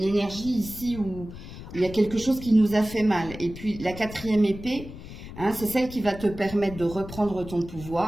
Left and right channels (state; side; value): noise; left; rumble, 13 dB below the sound